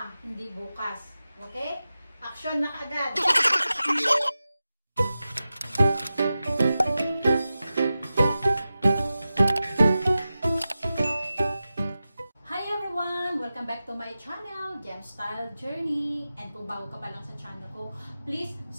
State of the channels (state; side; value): inverted; both; correlation -0.94